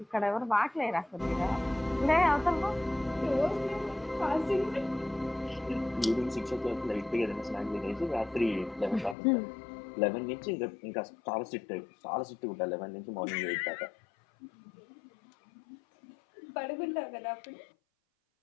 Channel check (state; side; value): drops out; right; at 9.2 s